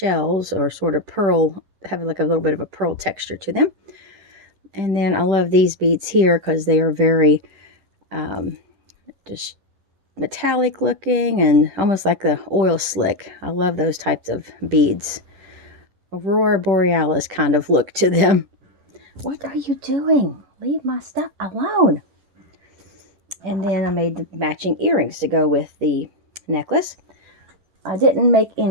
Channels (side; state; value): left; late; 10 ms